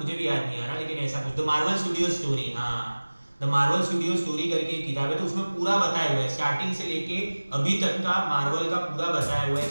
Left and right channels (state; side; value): inverted; both; correlation -1.00